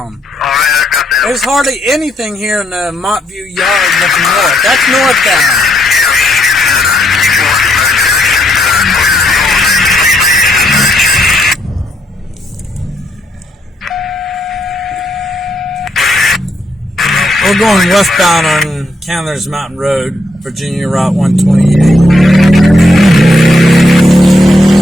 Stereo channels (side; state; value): both; normal; correlation 0.75